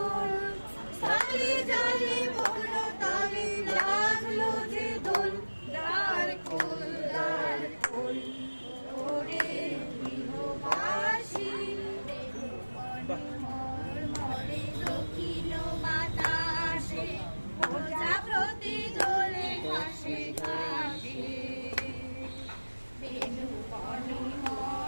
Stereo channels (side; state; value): both; inverted; correlation -1.00